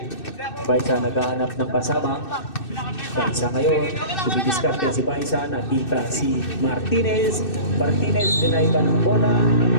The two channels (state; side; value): late; right; 2.6 ms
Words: Baisa naghahanap ng pasabang. Baisa ngayon, dumidiskarte si Baisa. Nakita si Martinez. Martinez, dinay ba ng bola?